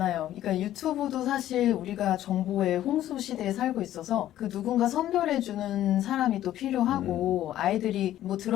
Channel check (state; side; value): quieter; right; 12.8 dB